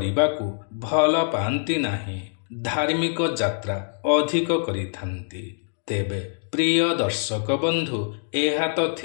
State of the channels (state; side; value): silent; right; digital silence